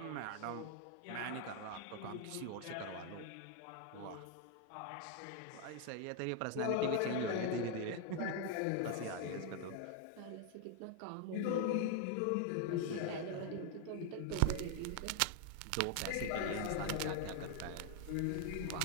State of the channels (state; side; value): different; both; correlation 0.01